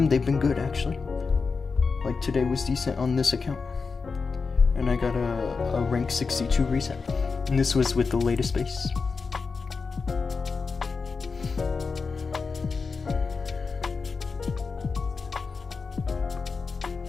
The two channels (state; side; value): quieter; right; 4.7 dB